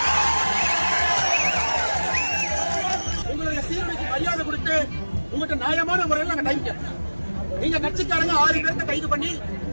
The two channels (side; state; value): both; inverted; correlation -1.00